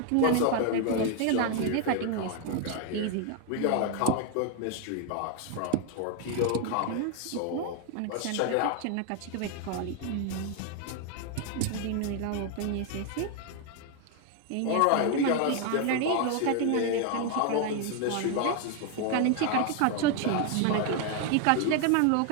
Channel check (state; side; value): different; both; correlation 0.00